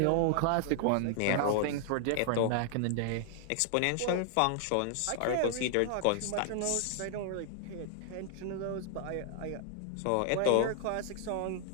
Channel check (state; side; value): different; both; correlation 0.00